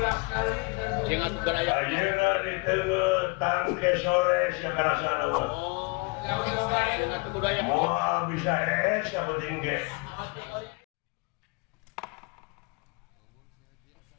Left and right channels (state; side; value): quieter; right; 29.0 dB